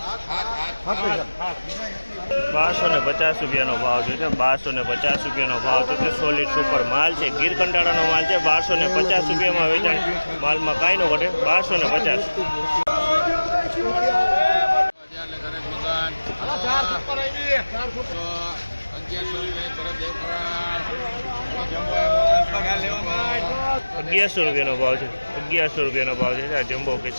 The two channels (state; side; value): inverted; both; correlation -1.00